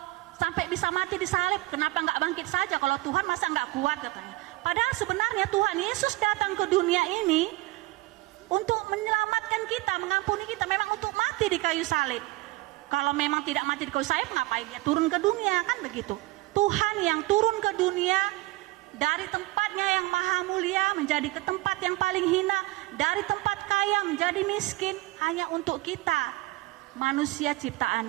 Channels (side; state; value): left; quieter; 19.6 dB